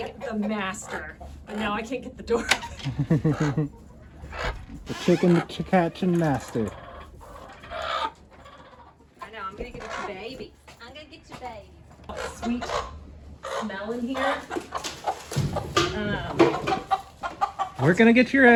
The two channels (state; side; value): identical; both; correlation 1.00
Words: the master, but now I can't get the door. The chicken catching master. I know, I'm gonna get you baby. I'm gonna get you baby. Sweet smell in here. We're gonna get your